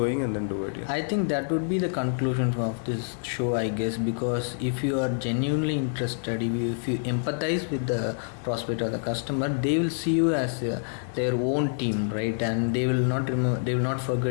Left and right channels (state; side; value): silent; right; 60 dB below the other